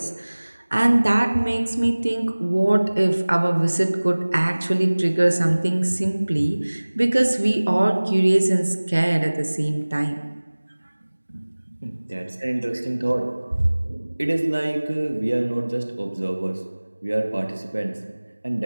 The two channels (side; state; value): both; inverted; correlation -1.00